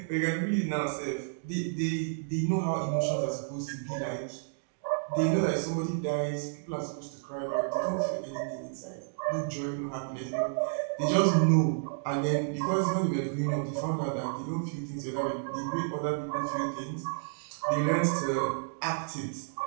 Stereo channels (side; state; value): left; silent; digital silence